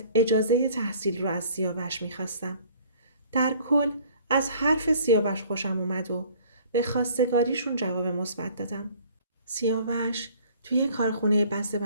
اجازه تحصیل رو از سیاوش میخواستم. در کل از حرف سیاوش خوشم اومد و به خواستگاریشون جواب مثبت دادم. سیاوش توی کارخونه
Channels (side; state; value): both; inverted; correlation -0.53